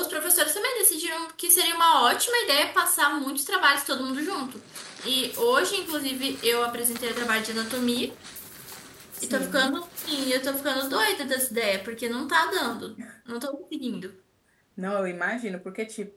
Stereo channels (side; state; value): both; identical; correlation 1.00